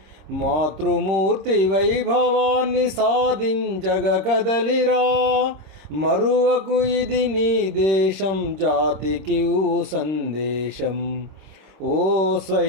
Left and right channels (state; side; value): late; left; 26 ms